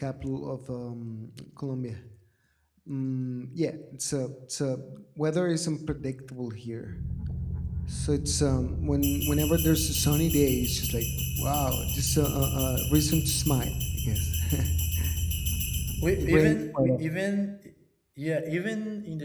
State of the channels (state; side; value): identical; both; correlation 1.00